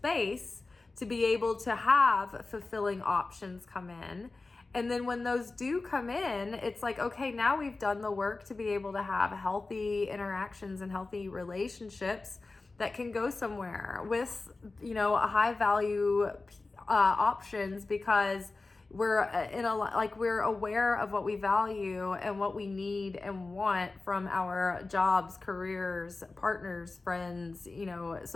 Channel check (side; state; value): right; quieter; 3.5 dB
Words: to be able to have fulfilling options come in. And then when those do come in, it's like, okay, now we've done the work to be able to have healthy interactions and healthy relationships that can go somewhere with, a high value options, because we're we're aware of what we value and what we need and want from our jobs, careers, partners, friends,